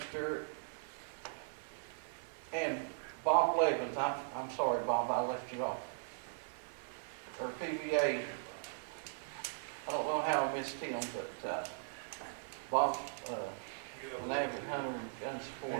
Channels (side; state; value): left; silent; 52 dB below the other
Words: Stewart and Bob Levins. I'm sorry, Bob, I left you off. Or PVA. I don't know how I missed him, but Bob's an avid hunter and gun supporter.